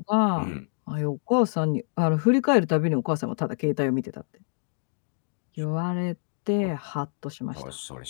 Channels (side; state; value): right; silent; 60 dB below the other